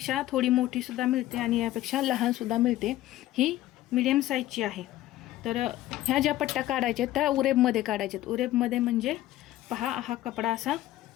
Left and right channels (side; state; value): right; quieter; 14.9 dB